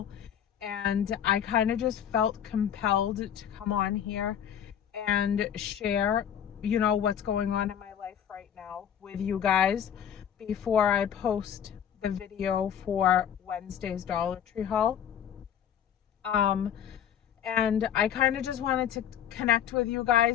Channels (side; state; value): right; quieter; 9.3 dB